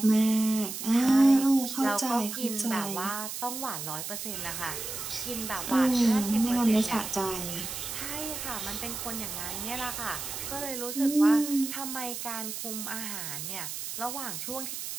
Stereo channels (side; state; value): right; noise; hiss, 6 dB below the sound